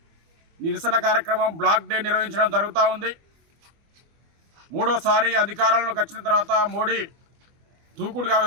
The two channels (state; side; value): late; left; 24 ms